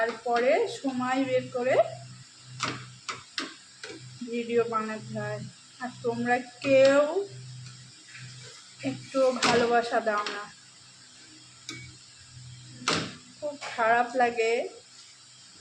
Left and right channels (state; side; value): identical; both; correlation 1.00